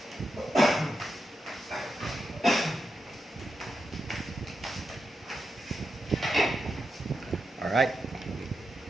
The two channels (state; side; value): normal; both; correlation 0.87